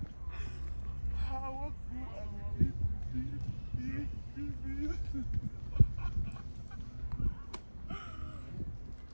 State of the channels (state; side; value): inverted; both; correlation -1.00